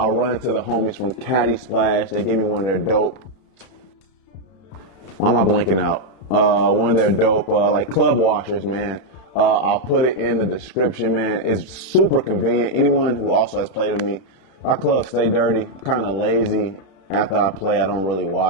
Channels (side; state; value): right; late; 31 ms